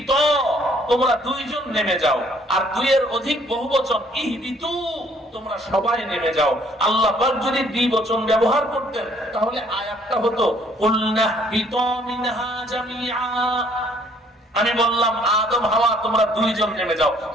তোমরা দুইজন নেমে যাও। আর দুইয়ের অধিক বহুবচন, ইহবিতু, তোমরা সবাই নেমে যাও। আল্লাহ পাক যদি দ্বিবচন ব্যবহার করতেন তাহলে আয়াতটা হতো কুলনাহবিতু মিনহা জামিআ। আমি বললাম আদম হাওয়া তোমরা দুইজন নেমে যাও,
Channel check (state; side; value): normal; both; correlation 0.62